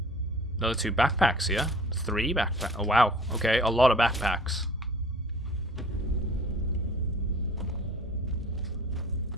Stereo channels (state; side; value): normal; both; correlation 0.48